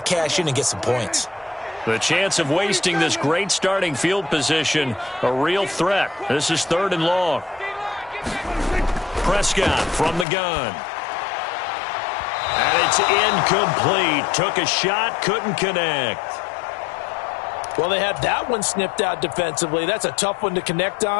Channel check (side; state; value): right; drops out; at 10.2 s